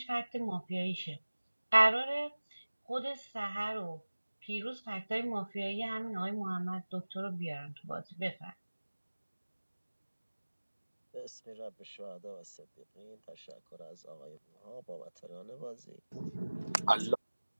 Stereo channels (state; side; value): inverted; both; correlation -1.00